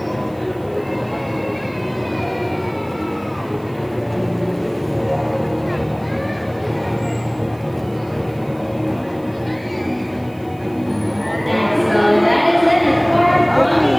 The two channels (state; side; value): noise; right; hiss, 29 dB below the sound